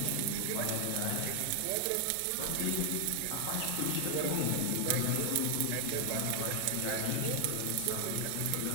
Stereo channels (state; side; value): different; both; correlation 0.00